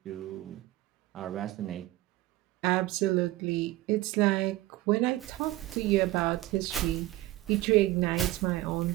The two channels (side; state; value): left; quieter; 17.1 dB